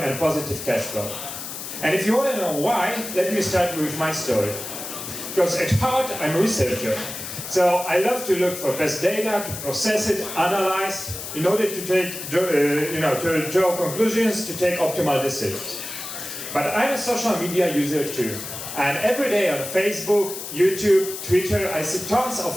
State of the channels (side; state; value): left; noise; hiss, 8 dB below the sound